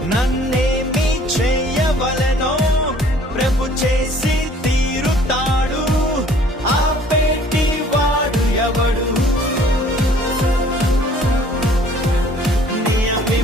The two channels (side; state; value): both; normal; correlation 0.55